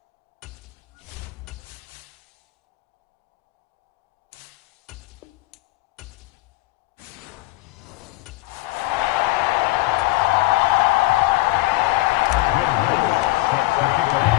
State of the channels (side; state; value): right; quieter; 19.4 dB